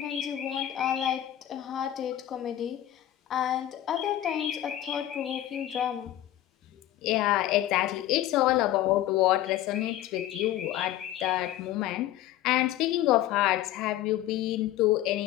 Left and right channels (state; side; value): quieter; right; 13.2 dB